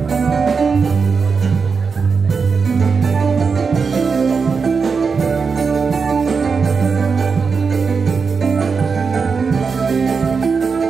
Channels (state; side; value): quieter; left; 5.3 dB